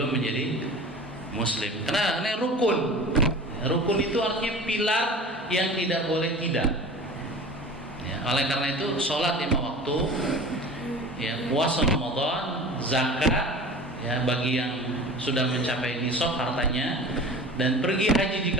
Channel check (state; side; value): normal; both; correlation 0.38